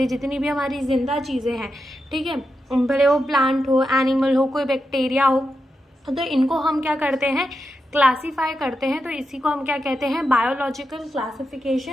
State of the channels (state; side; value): normal; both; correlation 0.88